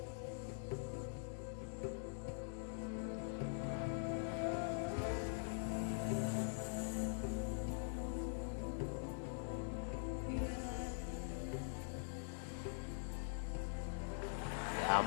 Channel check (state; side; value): silent; right; digital silence